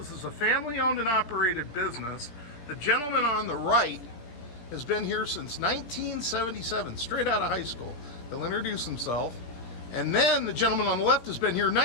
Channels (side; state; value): right; late; 17 ms